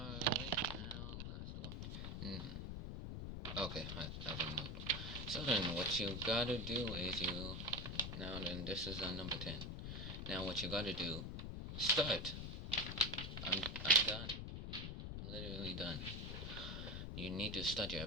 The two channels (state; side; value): noise; left; rumble, 5 dB below the sound